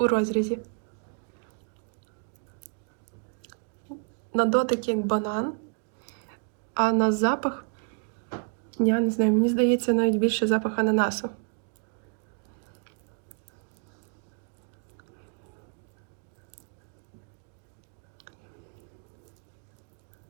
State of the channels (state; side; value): quieter; left; 39.1 dB